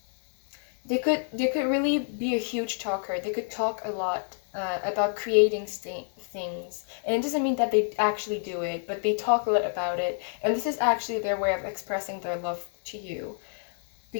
They could really be a huge talker. They could talk a lot about creating things, and it doesn't mean that they actually do it, but they talk a lot about it, and this is actually their way of expressing their love to you,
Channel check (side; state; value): right; silent; 59 dB below the other